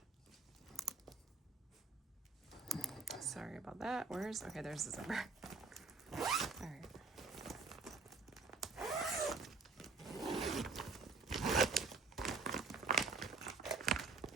Sorry about that. Okay, there's the zipper. All right.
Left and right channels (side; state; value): left; quieter; 4.0 dB